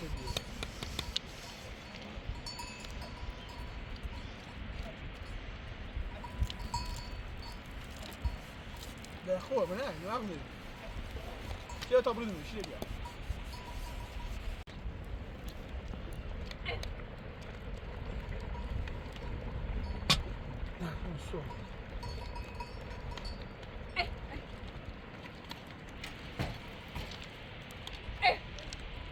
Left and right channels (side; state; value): both; identical; correlation 1.00